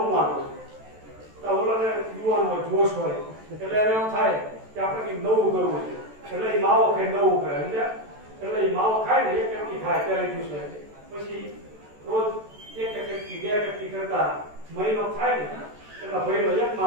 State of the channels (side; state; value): left; late; 14 ms